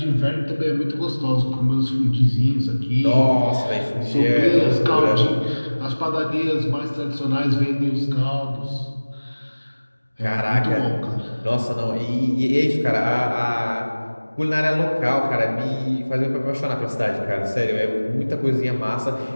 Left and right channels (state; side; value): inverted; both; correlation -1.00